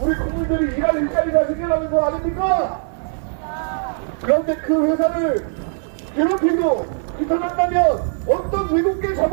국민들이 일할 일자리가 생겨나는 거 아닙니까? 그런데 그 회사를 괴롭히고 비판한다면 어떤 외국계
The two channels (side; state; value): left; silent; digital silence